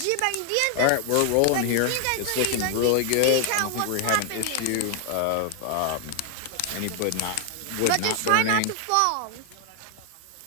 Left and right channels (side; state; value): both; different; correlation 0.00